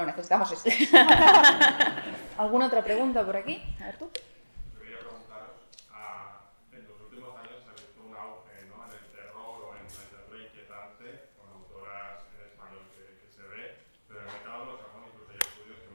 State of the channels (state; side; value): inverted; both; correlation -1.00